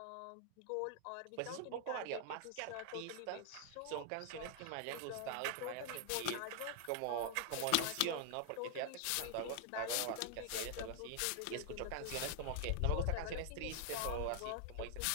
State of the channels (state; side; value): different; both; correlation 0.00